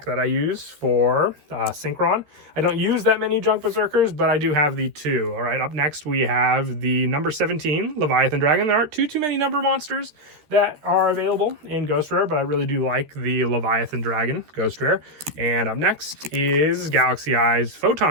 that I use for Synchron. I don't use that many Junk Berserkers, but I do have the 2. All right, up next we have the number 17 Leviathan Dragon. There aren't too many number monsters that are available in Ghost Rare, but I really do like the Leviathan Dragon Ghost Rare. And up next is Galaxy Eyes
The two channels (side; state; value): left; late; 13 ms